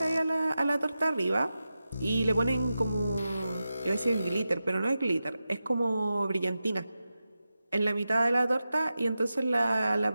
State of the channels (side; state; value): both; inverted; correlation -0.92